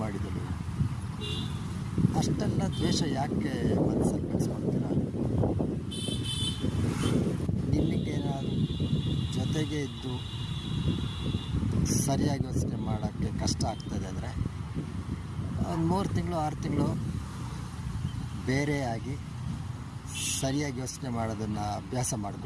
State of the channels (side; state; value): both; identical; correlation 1.00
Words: ಮಾಡಿದಳು. ಅಷ್ಟೆಲ್ಲ ದ್ವೇಷ ಯಾಕೆ ಮನಸ್ಸಲ್ಲಿ ಬೆಳೆಸ್ಕೊಳ್ತೀರ? ನಿಮಗೇನಾದರೂ ಜೊತೆಗೆ ಇದ್ದು ಸರಿಯಾಗಿ ಯೋಚನೆ ಮಾಡೋಕ್ಕೆ ಕಷ್ಟ ಆಗ್ತದೆ ಅಂದರೆ ಒಂದು 3 ತಿಂಗಳು 6 ತಿಂಗಳು ಬೇರೆಯಾಗಿ ಸರಿಯಾಗಿ ಯೋಚನೆ ಮಾಡೋದನ್ನು ಅಭ್ಯಾಸ